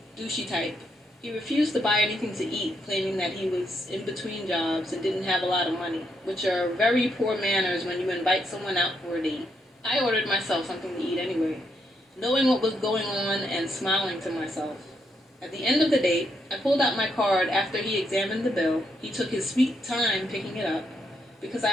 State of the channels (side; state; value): both; normal; correlation 0.78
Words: douchey type. He refused to buy anything to eat, claiming that he was in between jobs and didn't have a lot of money, which are very poor manners when you invite someone out for a date. I ordered myself something to eat anyway, knowing what was going on and smiling to myself. At the end of the date, I pulled out my card after he examined the bill. He took his sweet time picking it up, because